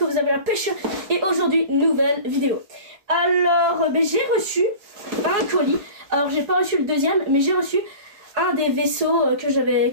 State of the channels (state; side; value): late; left; 4.8 ms